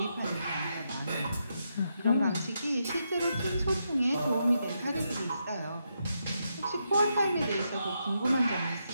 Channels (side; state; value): both; inverted; correlation -0.82